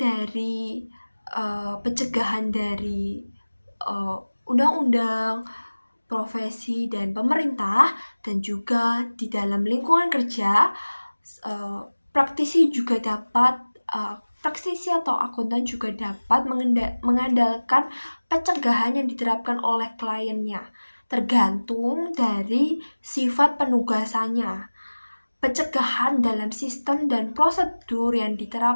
pencegahan dari undang-undang, profesi, dan pemerintah, dan juga di dalam lingkungan kerja, praktisi atau akuntan juga dapat mengandalkan pencegahan yang diterapkan oleh kliennya, tergantung dari sifat penugasannya. Pencegahan dalam sistem dan prosedur yang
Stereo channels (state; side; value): inverted; both; correlation -1.00